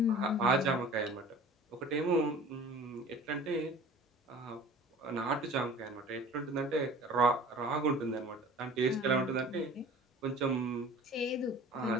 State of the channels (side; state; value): both; normal; correlation 0.44